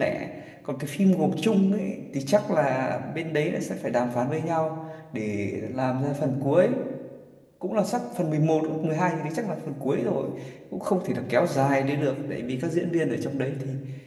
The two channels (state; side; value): identical; both; correlation 1.00